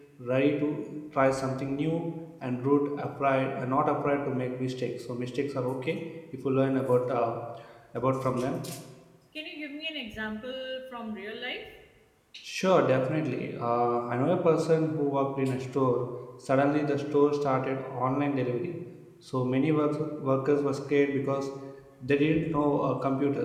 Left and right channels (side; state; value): both; identical; correlation 1.00